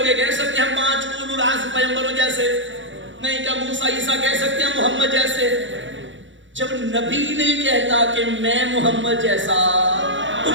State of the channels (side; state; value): left; late; 0.55 ms